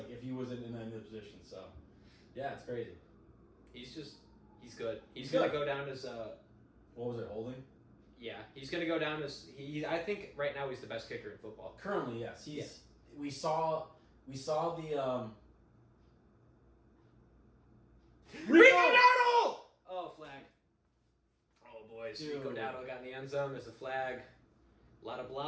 he wasn't in any position. So, yeah, it's crazy. He's good. He's going to go down as what was it, holding? Yeah, he's going to go down as I think right now he's the best kicker in football. Currently, yes. We saw the Rico Dowdle! Oh, flag. Oh, boys. Dude. Rico Dowdle got in the end zone. There's a flag. A lot of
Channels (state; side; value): identical; both; correlation 1.00